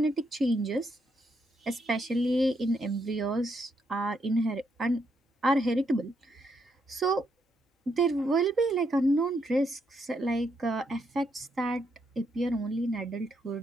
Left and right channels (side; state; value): both; normal; correlation 0.77